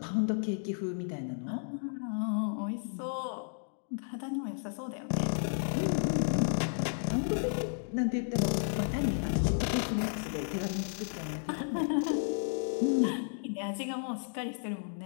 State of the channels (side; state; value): right; silent; digital silence